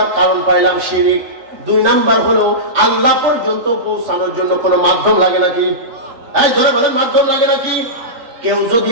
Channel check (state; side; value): late; left; 3.8 ms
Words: কারণ পাইলাম শিরক। দুই নাম্বার হলো আল্লাহ পর্যন্ত পৌঁছানোর জন্য কোনো মাধ্যম লাগে নাকি? এই ধরে বলেন, মাধ্যম লাগে নাকি? কেউ যদি